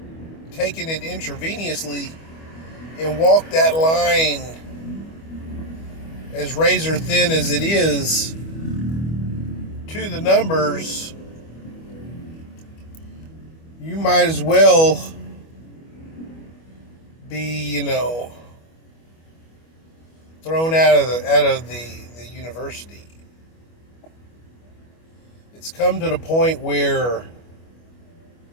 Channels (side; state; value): right; late; 25 ms